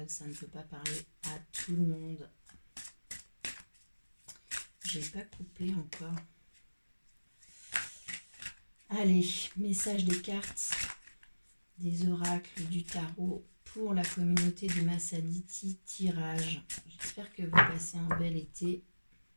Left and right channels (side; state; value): both; inverted; correlation -1.00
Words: ça ne peut pas parler à tout le monde. J'ai pas coupé encore. Allez, message des cartes, des oracles, du tarot pour la communauté de Massaditi Tirage. J'espère que vous passez un bel été.